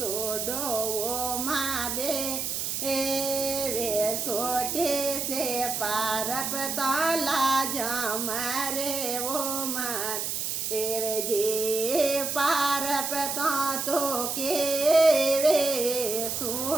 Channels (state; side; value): noise; right; hiss, 2 dB below the sound